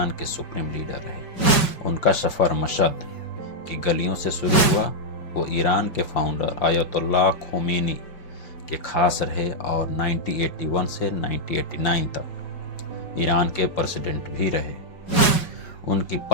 के सुप्रीम लीडर रहे। उनका सफर मशहद की गलियों से शुरू हुआ। वो ईरान के फाउंडर आयतुल्लाह खोमेनी के खास रहे और 1981 से 1989 तक ईरान के प्रेसिडेंट भी रहे। उनकी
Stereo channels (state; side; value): late; right; 5.4 ms